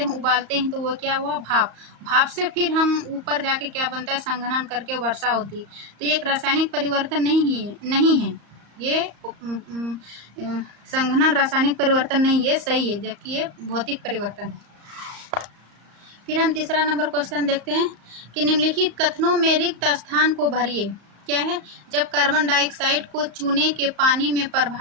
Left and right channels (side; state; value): left; late; 34 ms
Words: हैं, उबालते हैं, तो वो क्या हुआ, भाप। भाप से फिर हम ऊपर जाके क्या बनता है, संघनन करके वर्षा होती है। तो ये एक रासायनिक परिवर्तन नहीं है। ये संघनन रासायनिक परिवर्तन नहीं, ये सही है, जबकि ये भौतिक परिवर्तन है। फिर हम तीसरा नंबर क्वेश्चन देखते हैं कि निम्नलिखित कथनों में रिक्त स्थान को भरिए। क्या है, जब कार्बन डाइऑक्साइड को चूने के पानी में